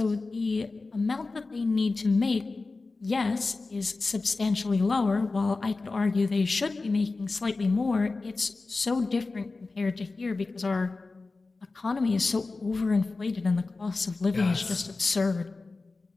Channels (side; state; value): right; quieter; 3.7 dB